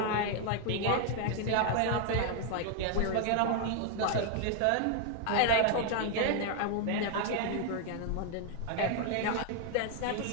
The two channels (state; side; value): different; both; correlation 0.00